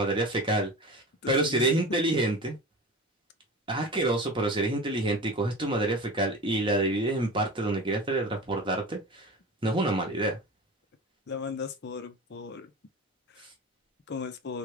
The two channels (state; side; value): normal; both; correlation 0.32